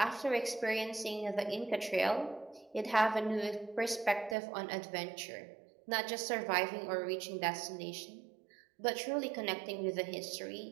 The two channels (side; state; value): left; drops out; at 4.4 s